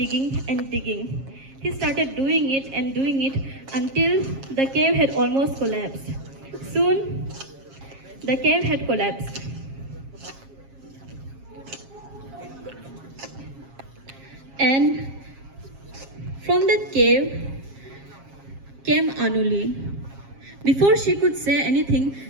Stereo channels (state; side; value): late; left; 7.4 ms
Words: and digging. He started doing it until the cave had almost collapsed. Soon, the cave had collapsed. And from that cave came Anuli. Before she could say anything,